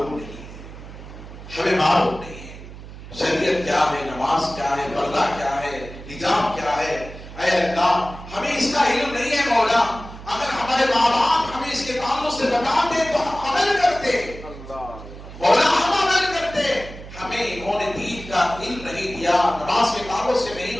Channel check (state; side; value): noise; right; hum, 14 dB below the sound